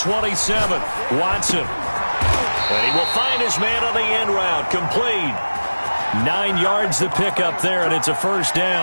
Watson. And he will find his man on the end route. Complete. 9 yards to pick up there, and it's a first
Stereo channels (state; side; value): inverted; both; correlation -1.00